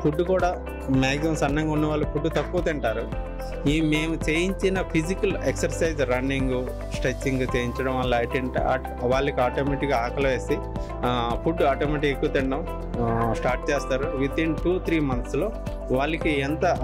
ఫుడ్ కూడా మ్యాక్సిమం సన్నంగా ఉన్న వాళ్ళు ఫుడ్ తక్కువ తింటారు. మేము చేయించిన ఫిజికల్ ఎక్సర్సైజ్, రన్నింగ్, స్ట్రెచ్చింగ్ చేయించడం వల్ల ఏంటంటే వాళ్ళకి ఆటోమేటిక్గా ఆకలి వేసి ఫుడ్ ఆటోమేటిక్గా ఎక్కువ తినడం స్టార్ట్ చేస్తారు. వితిన్ 2-3 monthsలో వాళ్ళకి ఎంత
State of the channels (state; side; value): identical; both; correlation 1.00